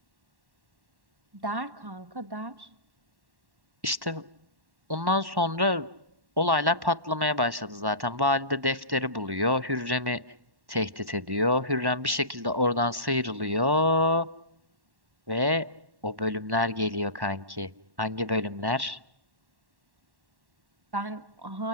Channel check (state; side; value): late; left; 1.1 ms